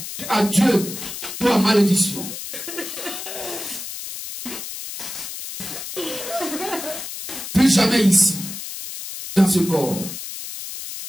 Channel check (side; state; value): left; noise; hiss, 8 dB below the sound